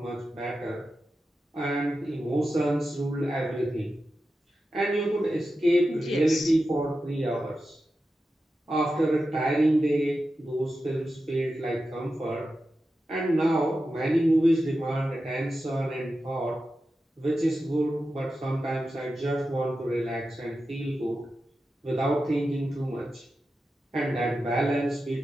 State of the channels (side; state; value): both; normal; correlation 0.91